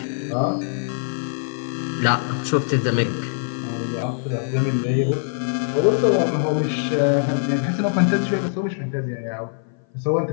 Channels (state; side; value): silent; right; 57 dB below the other